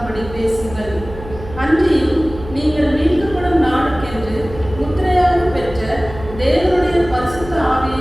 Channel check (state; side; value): noise; right; hum, 14 dB below the sound